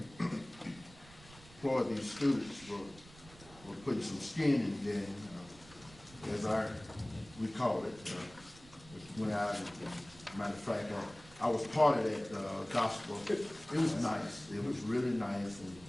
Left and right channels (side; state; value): right; noise; rumble, 21 dB below the sound